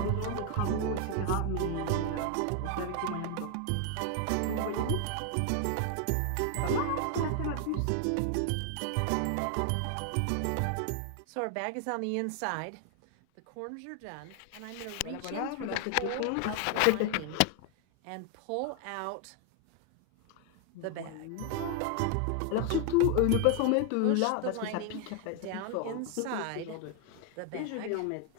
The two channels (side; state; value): both; different; correlation 0.00